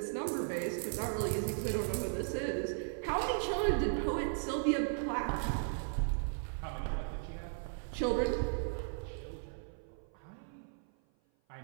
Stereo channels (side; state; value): left; silent; 53 dB below the other